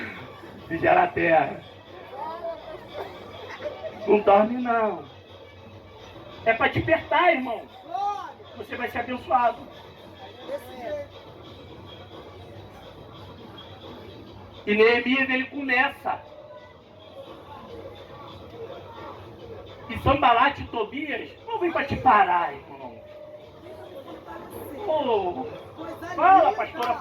Vigiar a terra. Não dorme não. É para despertar, irmão. Você vai ser abençoado. E Neemias ele começa. E Sambalate e Tobias não vem para te parar, irmão. Oh, fala, pastora,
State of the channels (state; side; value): identical; both; correlation 1.00